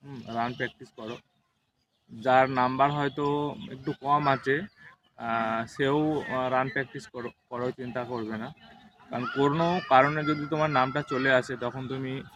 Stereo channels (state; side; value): identical; both; correlation 1.00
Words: রান প্র্যাকটিস করো। যার নাম্বার হয়তো একটু কম আছে সেও রান প্র্যাকটিস করো, চিন্তা করবে না। কারণ কোনো কারণে যদি তোমার নামটা চলে আসে তখন তুমি